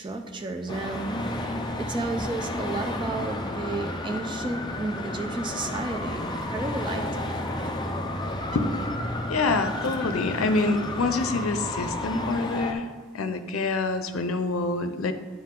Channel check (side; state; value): both; normal; correlation 0.43